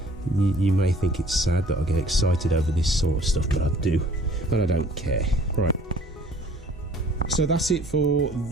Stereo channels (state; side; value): normal; both; correlation 0.54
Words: You may think it's sad that I get excited over this sort of stuff, but I do, and I don't care. Right, so that's it for